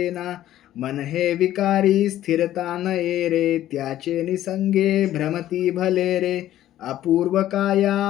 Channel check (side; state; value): right; quieter; 13.0 dB